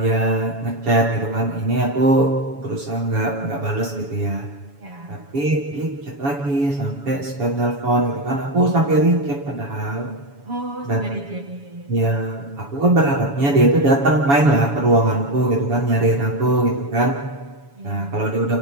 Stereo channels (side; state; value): left; late; 7.1 ms